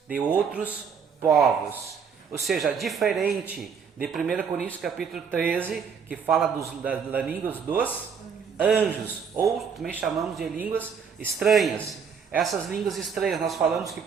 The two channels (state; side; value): quieter; left; 6.4 dB